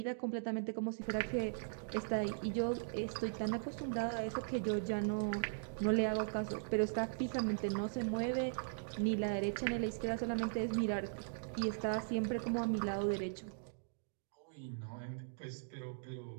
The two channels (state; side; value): silent; left; digital silence